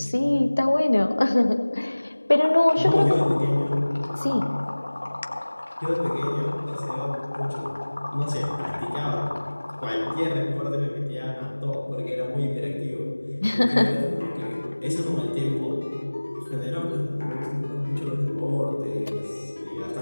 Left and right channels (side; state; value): both; inverted; correlation -1.00